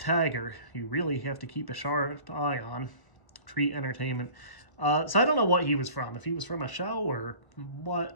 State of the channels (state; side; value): late; right; 1.0 ms